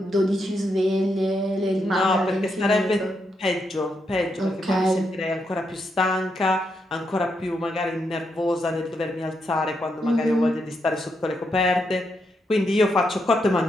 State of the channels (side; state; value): both; normal; correlation 0.81